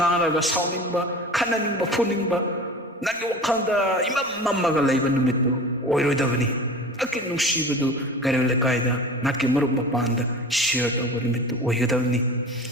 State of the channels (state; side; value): normal; both; correlation 0.36